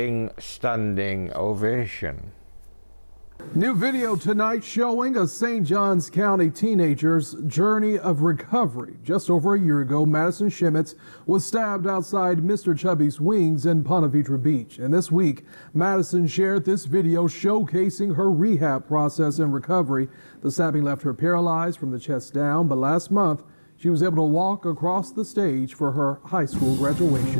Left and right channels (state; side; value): inverted; both; correlation -1.00